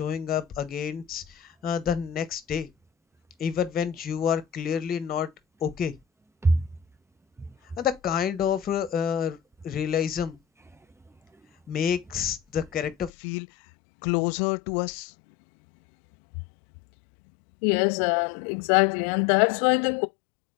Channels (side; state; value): right; drops out; at 13.1 s